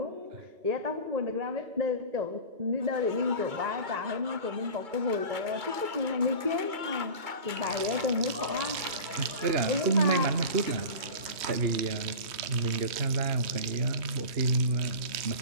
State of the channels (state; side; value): late; left; 3.1 ms